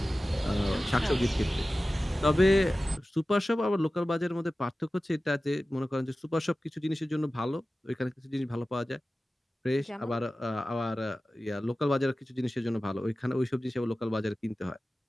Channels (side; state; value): both; normal; correlation 0.96